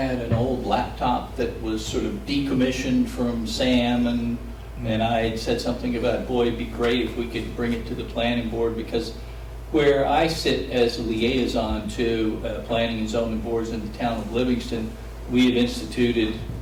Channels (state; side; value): identical; both; correlation 1.00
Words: an old laptop that was sort of decommissioned from Sam, and I had said something about, boy, it'd be great if we could bring it to the planning board, because where I sit as a liaison to planning and zoning boards in the town of Livingston, we have instituted,